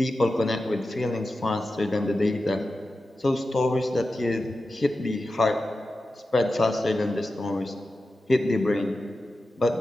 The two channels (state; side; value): normal; both; correlation 0.92